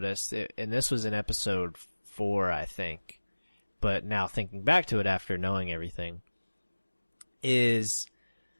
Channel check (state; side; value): inverted; both; correlation -1.00